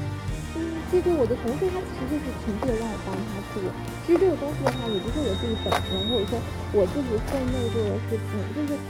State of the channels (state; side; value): identical; both; correlation 1.00